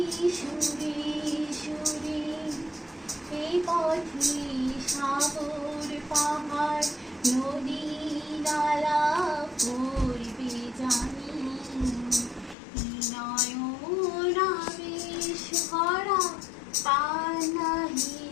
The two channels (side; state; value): right; drops out; at 12.6 s